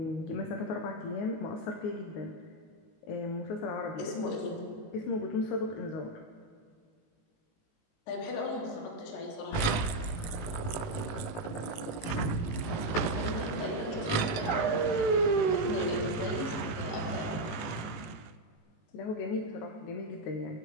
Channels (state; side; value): late; right; 19 ms